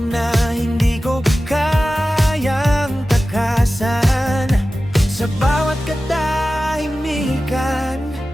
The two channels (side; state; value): both; normal; correlation 0.95